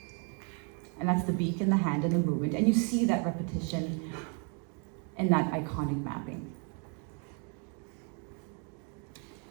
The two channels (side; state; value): left; quieter; 38.6 dB